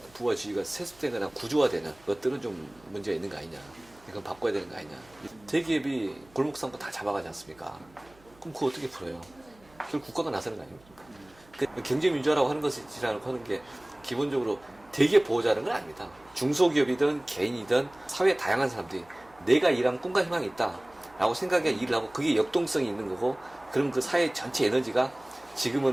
부와 지위가 세습되거나 구조화되는 것들은 좀 문제가 있는 거 아니냐. 이건 바꿔야 되는 거 아니냐. 대기업이 골목상권 다 잡아가지 않습니까? 그럼 그거 어떻게 풀어요? 결국 국가가 나서는 거 아닙니까? 그 경제민주화라고 하는 것이라고 하는 게 기본적으로 대기업 보호자는 건 아닙니다. 중소기업이든 개인이든 사회의 다양한 사람들이 내가 일하면 꿈과 희망이 있다 라고 생각해 일을 하고 그게 역동성이 있는 거고, 그럼 그 사회 전체 에너지가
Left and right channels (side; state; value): right; noise; hum, 28 dB below the sound